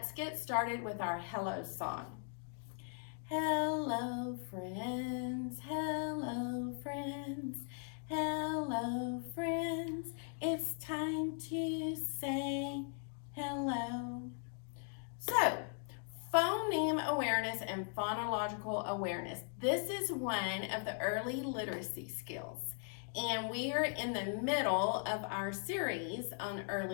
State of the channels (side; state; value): right; silent; 52 dB below the other